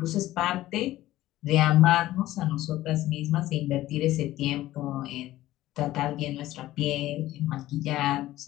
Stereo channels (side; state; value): right; quieter; 15.4 dB